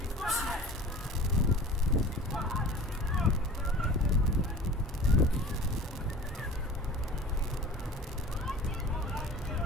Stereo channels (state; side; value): normal; both; correlation 0.39